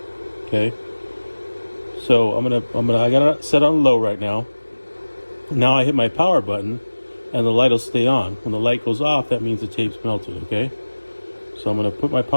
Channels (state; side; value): inverted; both; correlation -1.00